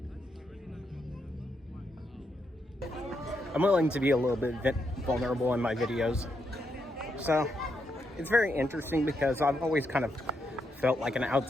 I'm willing to be a little bit vulnerable in my videos. So it's very interesting because I've always kind of felt like an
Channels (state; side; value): normal; both; correlation 0.80